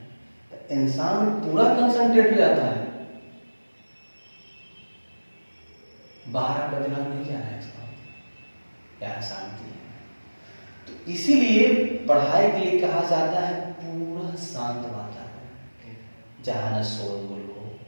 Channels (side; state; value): both; inverted; correlation -1.00